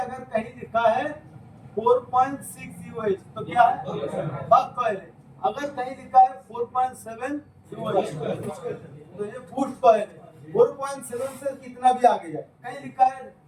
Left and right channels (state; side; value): identical; both; correlation 1.00